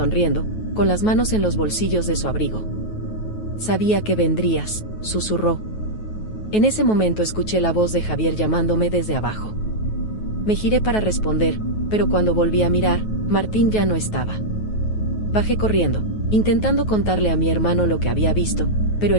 con las manos en los bolsillos de su abrigo. Sabía que vendrías, susurró. En ese momento escuché la voz de Javier llamándome desde abajo. Me giré para responder, pero cuando volví a mirar, Martín ya no estaba. Bajé corriendo, intentando contarle a mi hermano lo que había visto, pero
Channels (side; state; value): right; late; 9.3 ms